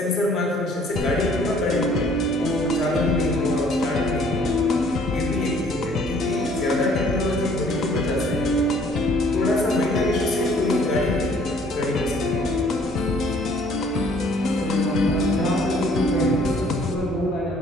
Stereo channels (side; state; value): both; normal; correlation 0.58